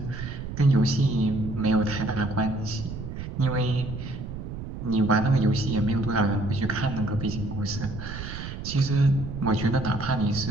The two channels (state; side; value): noise; right; rumble, 8 dB below the sound